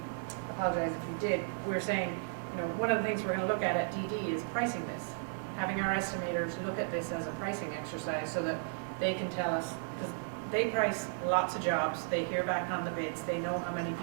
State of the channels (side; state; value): left; silent; digital silence